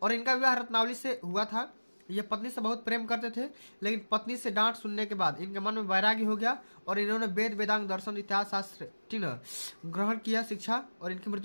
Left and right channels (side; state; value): both; inverted; correlation -1.00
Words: और इनका विवाह रत्नावली से हुआ था। ये पत्नी से बहुत प्रेम करते थे, लेकिन पत्नी से डांट सुनने के बाद इनके मन में वैराग्य हो गया और इन्होंने वेद वेदांग दर्शन इतिहास शास्त्र ग्रहण किया शिक्षा और इनकी